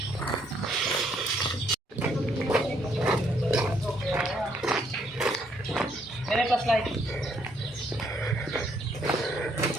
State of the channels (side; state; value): both; normal; correlation 0.70